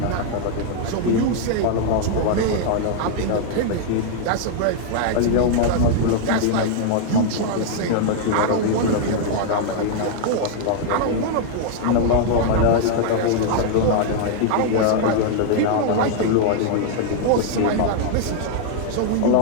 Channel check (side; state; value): both; different; correlation 0.00